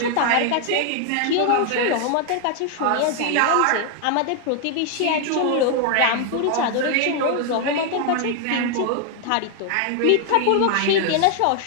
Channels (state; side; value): different; both; correlation 0.00